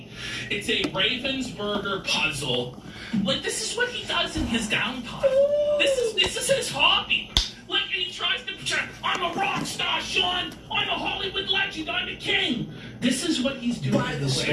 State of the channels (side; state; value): both; identical; correlation 1.00